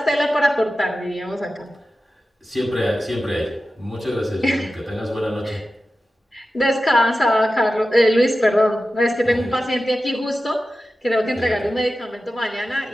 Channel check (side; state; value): both; normal; correlation 0.94